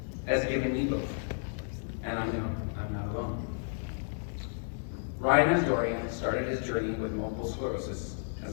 has given me both, and I know I'm not alone. Ryan Asdourian started his journey with multiple sclerosis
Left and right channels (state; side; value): silent; right; digital silence